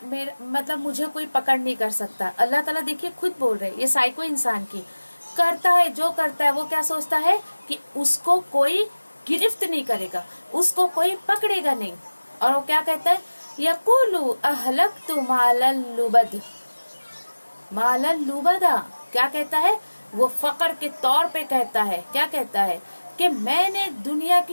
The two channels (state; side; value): inverted; both; correlation -1.00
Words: मुझे कोई पकड़ नहीं कर सकता। अल्लाह ताला देखिए खुद बोल रहे हैं, ये साइको इंसान की करता है, जो करता है वो क्या सोचता है कि उसको कोई गिरफ्त नहीं करेगा, उसको कोई पकड़ेगा नहीं। और वो क्या कहता है? यक़ूलु अहलक्तु मालन लुबद। मालन लुबदा क्या कहता है? वो फकर के तौर पे कहता है, क्या कहता है कि मैंने दुनिया